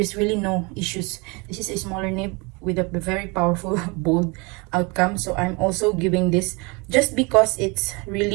really no issues. This is a smaller nib with a very powerful bold outcome. So I'm also giving this, just because it's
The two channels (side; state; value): left; quieter; 28.7 dB